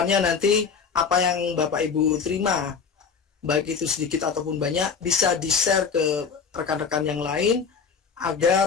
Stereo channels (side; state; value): right; quieter; 5.9 dB